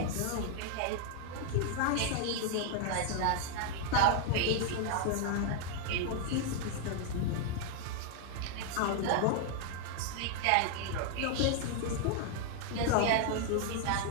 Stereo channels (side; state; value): both; different; correlation 0.00